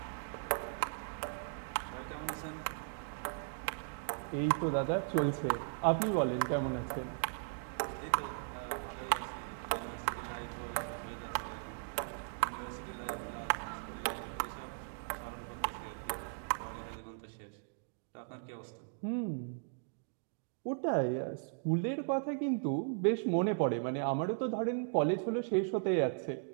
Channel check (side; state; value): left; silent; digital silence